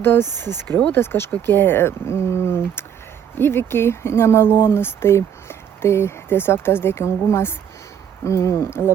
skriaudos, kažkokie įvykiai nemalonus. Tai tiesiog tas dėkingumas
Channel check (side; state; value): left; quieter; 8.6 dB